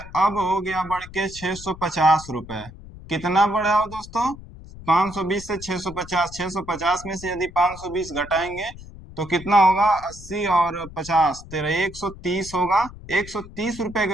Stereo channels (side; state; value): left; noise; rumble, 16 dB below the sound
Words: अब हो गया बढ़ के 650 रुपए। कितना बढ़ा हो दोस्तों? 520 से 650, 650 में से यदि 520 घटाएंगे तो कितना होगा 80 और 50 तेरह 130 होगा। 130 रुपए